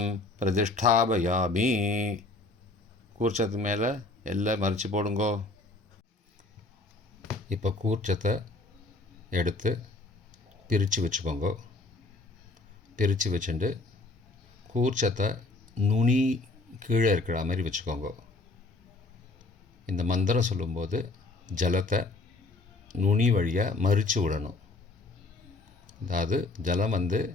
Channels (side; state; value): right; quieter; 3.3 dB